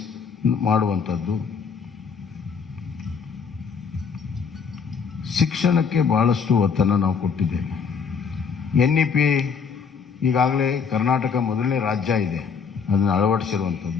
ಮಾಡುವಂಥದ್ದು. ಶಿಕ್ಷಣಕ್ಕೆ ಬಹಳಷ್ಟು ಒತ್ತನ್ನು ನಾವು ಕೊಟ್ಟಿದ್ದೇವೆ. NEP ಈಗಾಗಲೇ ಕರ್ನಾಟಕ ಮೊದಲನೇ ರಾಜ್ಯ ಇದೆ ಅದನ್ನು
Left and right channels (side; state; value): right; quieter; 6.0 dB